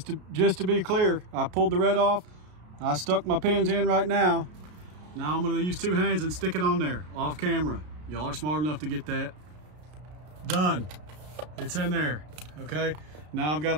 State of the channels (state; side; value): late; left; 33 ms